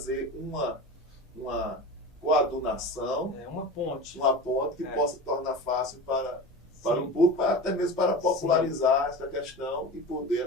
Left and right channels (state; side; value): normal; both; correlation 0.31